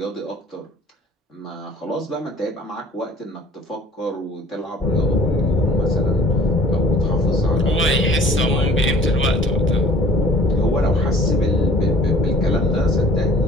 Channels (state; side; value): normal; both; correlation 0.51